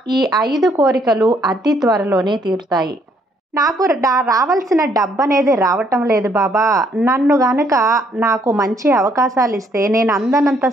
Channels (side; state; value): both; normal; correlation 0.68